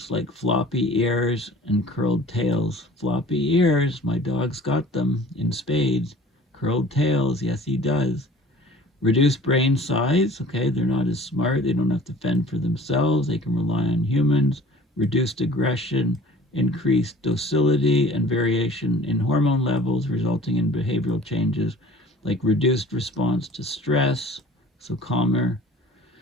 like floppy ears and curled tails. Floppy ears, my dog's got them in spades. Curled tails, yes he does. Reduced brain size, okay, they're not as smart, they don't have to fend for themselves, they can rely on humans. Reduced aggression, increased docility, and variation in hormone levels resulting in behavioral changes like reduced response to stress, so calmer.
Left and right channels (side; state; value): both; normal; correlation 0.47